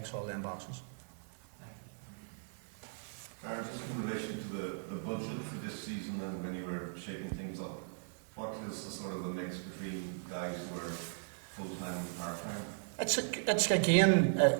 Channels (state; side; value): silent; left; digital silence